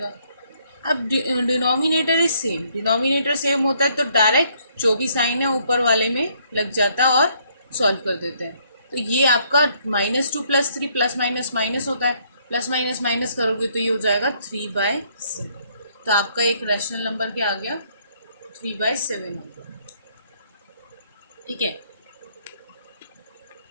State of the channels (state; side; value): inverted; both; correlation -0.68